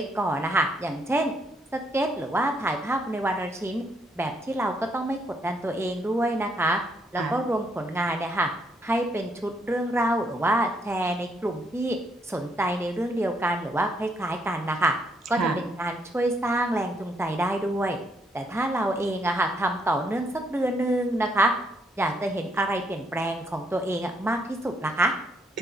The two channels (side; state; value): both; normal; correlation 0.73